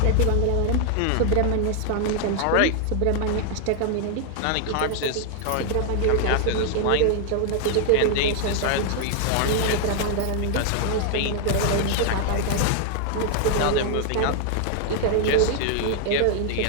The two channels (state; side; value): different; both; correlation 0.00